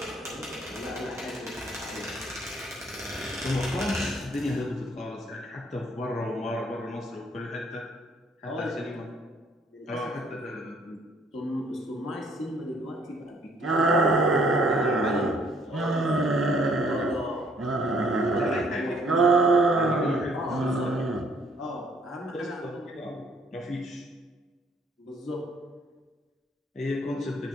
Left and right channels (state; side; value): normal; both; correlation 0.64